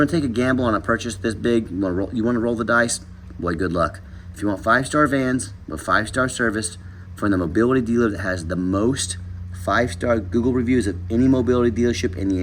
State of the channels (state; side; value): identical; both; correlation 1.00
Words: to take a gamble on a purchase this big, you want to roll the dice, boy, good luck. If you want 5-star vans with 5-star service from the mobility dealer that has the most 5-star Google reviews of any mobility dealership in the